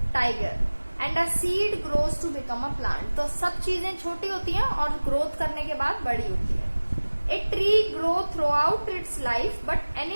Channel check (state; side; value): inverted; both; correlation -1.00